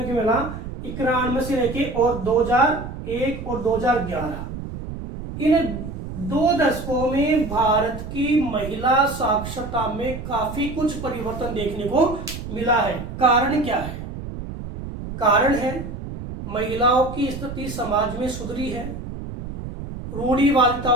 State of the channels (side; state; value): right; noise; rumble, 9 dB below the sound